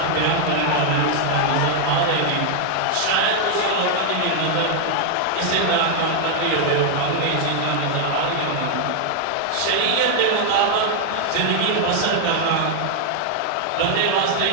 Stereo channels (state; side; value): different; both; correlation 0.00